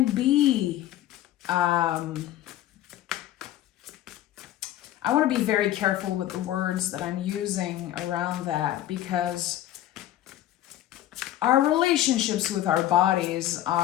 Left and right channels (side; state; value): right; quieter; 13.2 dB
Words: be, I want to be very careful with the words that I'm using around that, because our relationships with our bodies